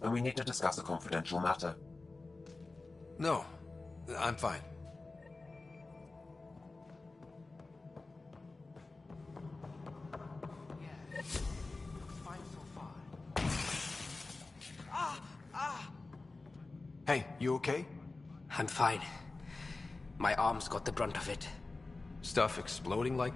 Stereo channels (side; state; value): right; quieter; 3.4 dB